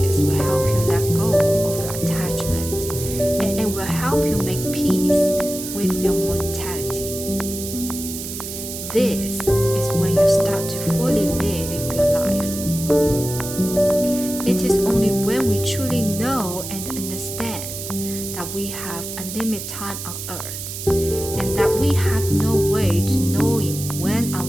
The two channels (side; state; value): right; noise; hiss, 8 dB below the sound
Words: will help you let go of your attachment, and it will help you make peace with your mortality. This is when you start to fully live your life. It is only when we truly know and understand that we have a limited time on earth, and that we have no way to knowing when